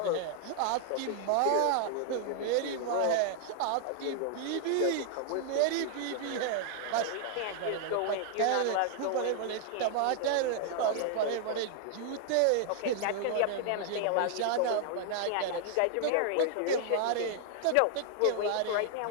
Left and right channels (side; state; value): both; different; correlation 0.00